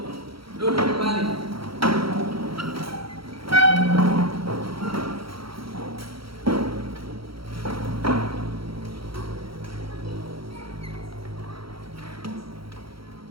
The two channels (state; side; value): late; left; 0.75 ms